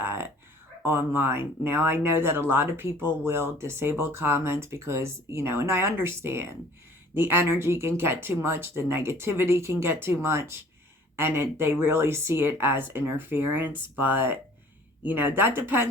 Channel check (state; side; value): normal; both; correlation 0.52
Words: online. Now, I know that a lot of people will disable comments because, and I understand the energy can get too much, the negativity can get too much, and they really see it as interference. But, that